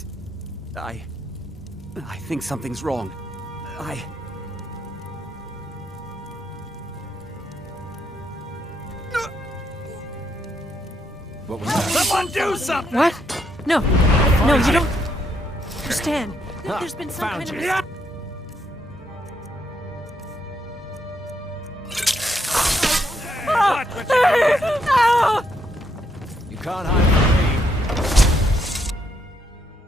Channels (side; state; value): both; normal; correlation 0.76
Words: I think something's wrong. What was that? Someone do something! What? No, you don't understand. There's been some kind of... You can't hide from me.